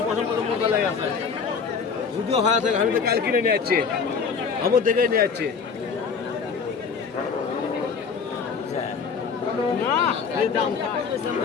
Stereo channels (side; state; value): right; quieter; 5.7 dB